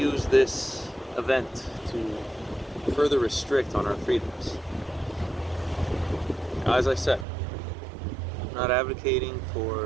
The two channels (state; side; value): drops out; left; at 7.2 s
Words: this event to further restrict on our freedoms. As I said, I'm not advocating